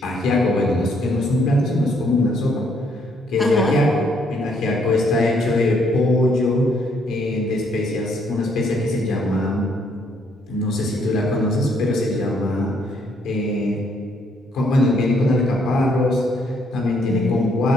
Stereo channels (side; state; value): both; normal; correlation 0.69